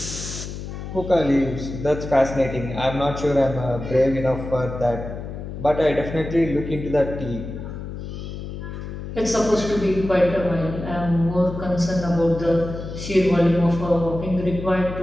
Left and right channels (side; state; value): left; noise; hum, 8 dB below the sound